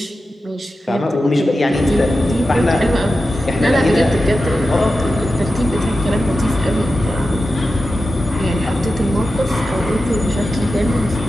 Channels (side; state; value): both; normal; correlation 0.92